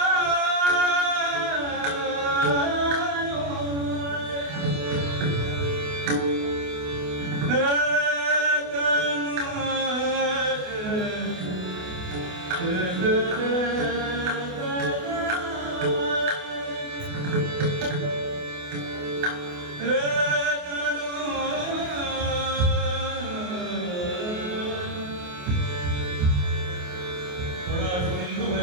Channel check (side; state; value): left; late; 28 ms